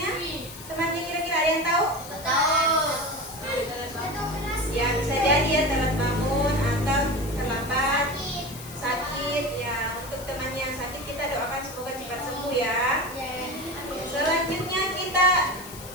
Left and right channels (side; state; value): left; noise; hiss, 15 dB below the sound